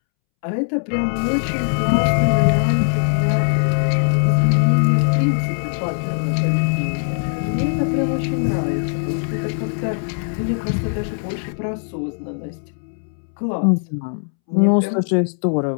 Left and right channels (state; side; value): silent; right; 66 dB below the other